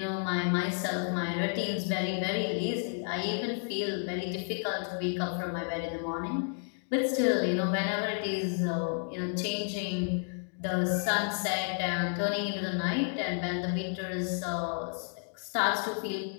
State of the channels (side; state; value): right; silent; 57 dB below the other